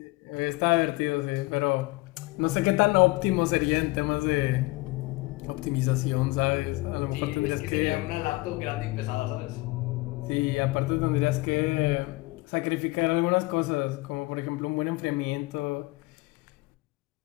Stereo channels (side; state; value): right; quieter; 22.3 dB